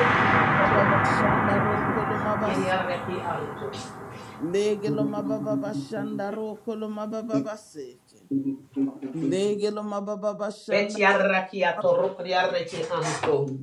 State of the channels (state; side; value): identical; both; correlation 1.00